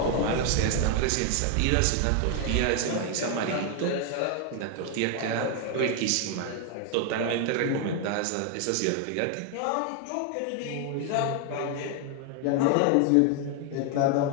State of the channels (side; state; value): both; different; correlation 0.00